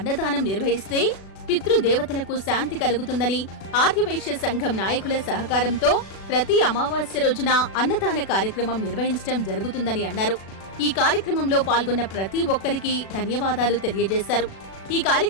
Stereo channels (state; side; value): late; right; 36 ms